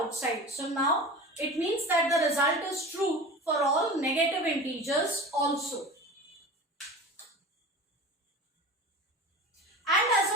So now it means that the result is true for all negative integers also. And as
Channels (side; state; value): both; normal; correlation 0.34